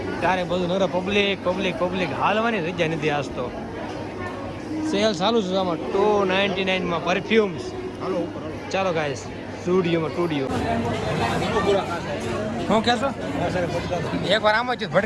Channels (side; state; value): both; identical; correlation 1.00